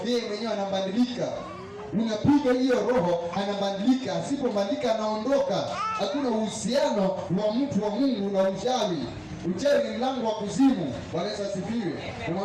yeye mwenyewe anabadilika. Unapiga hiyo roho, anabadilika. Asipobadilika anaondoka. Hakuna uhusiano wa mtu wa Mungu na uchawi. Uchawi ni mlango wa kuzimu. Bwana Yesu asifiwe.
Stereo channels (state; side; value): identical; both; correlation 1.00